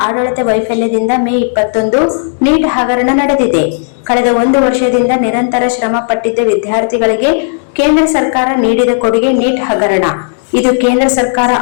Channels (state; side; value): silent; right; digital silence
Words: ಆಡಳಿತ ವೈಫಲ್ಯದಿಂದ ಮೇ 21 ನೀಟ್ ಹಗರಣ ನಡೆದಿದೆ. ಕಳೆದ 1 ವರ್ಷದಿಂದ ನಿರಂತರ ಶ್ರಮ ಪಟ್ಟಿದ್ದ ವಿದ್ಯಾರ್ಥಿಗಳಿಗೆ ಕೇಂದ್ರ ಸರ್ಕಾರ ನೀಡಿದ ಕೊಡುಗೆ ನೀಟ್ ಹಗರಣ. ಇದು ಕೇಂದ್ರ ಸರ್ಕಾರ